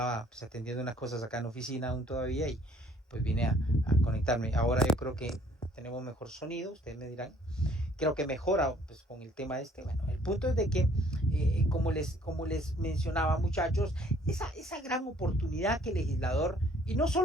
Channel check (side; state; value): both; normal; correlation 0.59